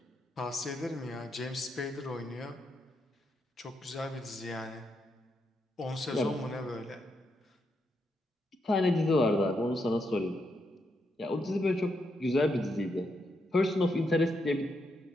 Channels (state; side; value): normal; both; correlation 0.81